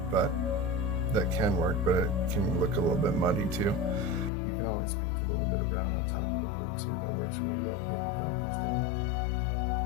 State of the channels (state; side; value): drops out; right; at 4.3 s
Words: but that can work, but it can look a little bit muddy too. You can always paint a little bit of brown on top of the blue too. That works really well to get your values down.